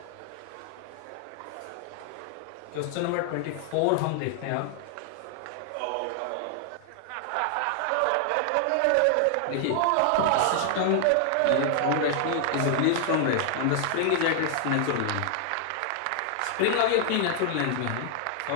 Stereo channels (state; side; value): different; both; correlation 0.00